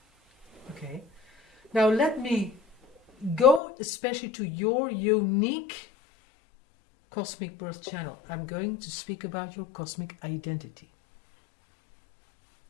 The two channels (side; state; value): right; drops out; at 3.6 s